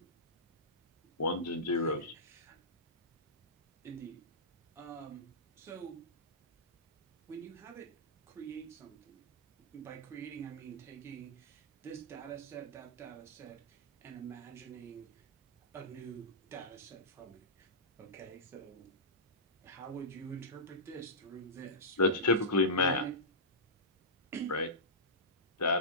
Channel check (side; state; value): both; normal; correlation -0.16